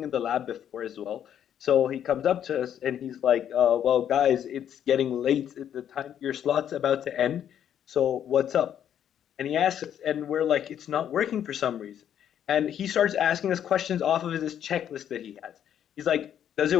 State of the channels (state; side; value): quieter; right; 9.7 dB